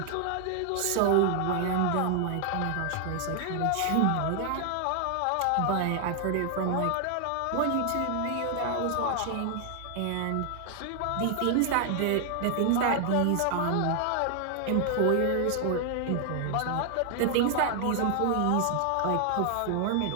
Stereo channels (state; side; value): different; both; correlation 0.00